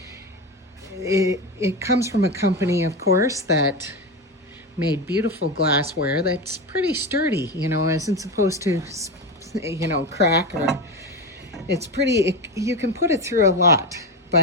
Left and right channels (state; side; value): normal; both; correlation 0.18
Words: It comes from a company, of course, that made beautiful glassware that's pretty sturdy, you know, isn't supposed to, you know, crack, or it's pretty, you can put it through a lot.